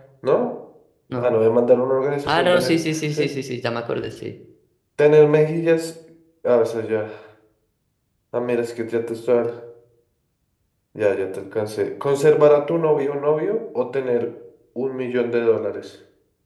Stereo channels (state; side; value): identical; both; correlation 1.00